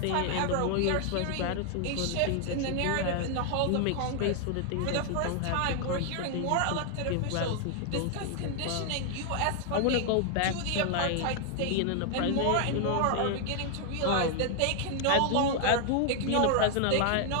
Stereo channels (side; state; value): both; different; correlation 0.00